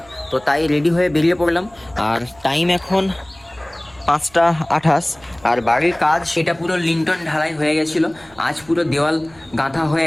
তো তাই রেডি হয়ে বেরিয়ে পড়লাম। আর টাইম এখন 5টা 28। আর বাড়ির কাজ সেটা পুরো লিন্টন ঢালাই হয়ে গেছিলো। আজ পুরো দেওয়াল গাঁথা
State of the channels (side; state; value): right; noise; rumble, 27 dB below the sound